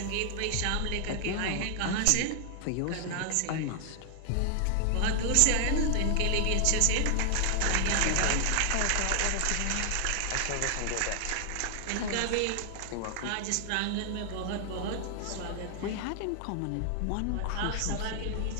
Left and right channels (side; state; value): both; different; correlation 0.00